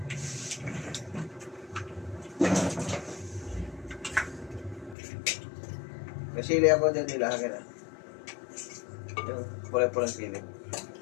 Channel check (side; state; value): right; drops out; at 5.0 s